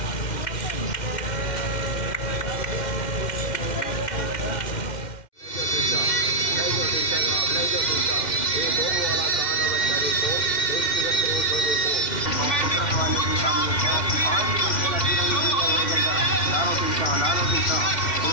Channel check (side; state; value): right; late; 2.1 ms